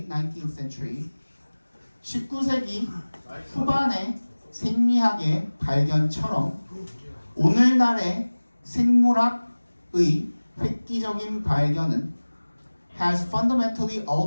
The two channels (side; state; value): both; inverted; correlation -1.00